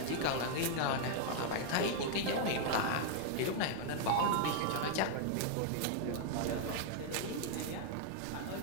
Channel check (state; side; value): different; both; correlation 0.00